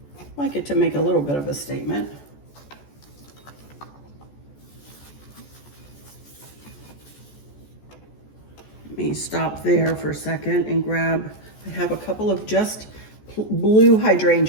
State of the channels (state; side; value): late; right; 14 ms